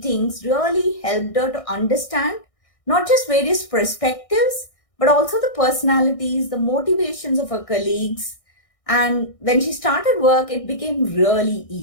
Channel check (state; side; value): late; right; 1.6 ms